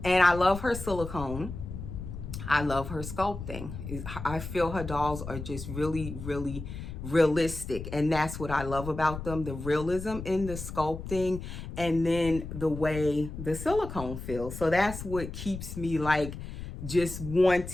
And I love her silicone. I love her sculpting. I feel her dolls are just really, really realistic, and that's what I love about them, the realism in the sculpting and then the way the silicone feels. So that's what keeps me just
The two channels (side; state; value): left; noise; rumble, 9 dB below the sound